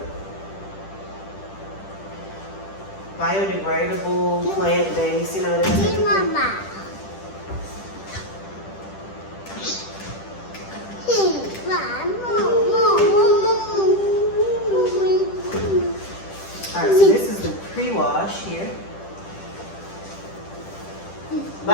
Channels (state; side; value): late; right; 10 ms